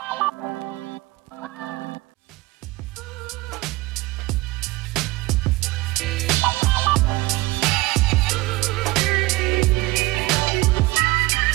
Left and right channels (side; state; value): left; quieter; 20.7 dB